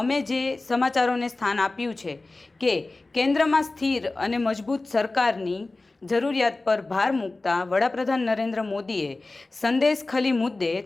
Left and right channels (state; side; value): quieter; right; 3.2 dB